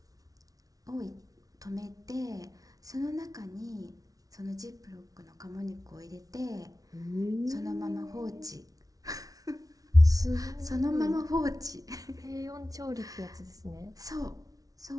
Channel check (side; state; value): left; late; 0.18 ms